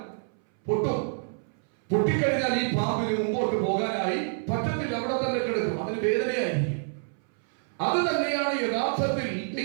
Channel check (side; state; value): left; silent; 60 dB below the other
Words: പൊട്ടിക്കഴിഞ്ഞാൽ ഈ പാമ്പിന് മുമ്പോട്ട് പോകാനായി പറ്റത്തില്ല, അവിടെ തന്നെ കിടക്കും, അതിന് വേദനയായിരിക്കും. അത് തന്നെയാണ് യഥാർത്ഥത്തിൽ